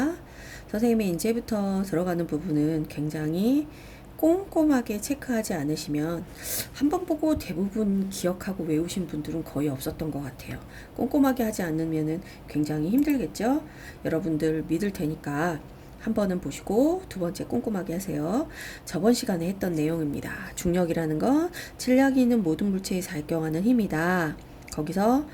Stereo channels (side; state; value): both; identical; correlation 1.00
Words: 선생님이 이제부터 들어가는 부분은 굉장히 꼼꼼하게 체크하지 않으시면 한 번 보고 대부분 기억하고 외우신 분들은 거의 없었던 것 같아요. 꼼꼼하게 하지 않으면 굉장히 힘들겠죠? 여러분들 믿을 테니까 한 번은 보시고 두 번째 꼼꼼하게 하세요. 저번 시간에 했던 내용입니다. 중력이라는 건 질량이 있는 모든 물체에 작용하는 힘이다. 거기서